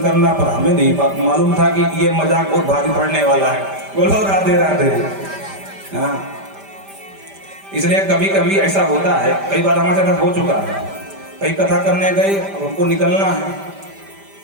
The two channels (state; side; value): late; left; 5.1 ms